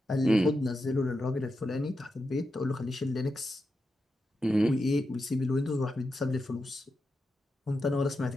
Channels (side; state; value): both; normal; correlation 0.87